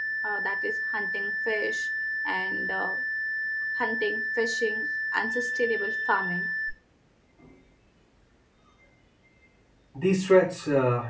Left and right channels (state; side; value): identical; both; correlation 1.00